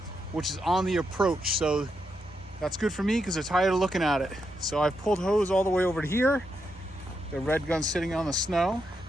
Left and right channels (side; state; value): both; normal; correlation 0.83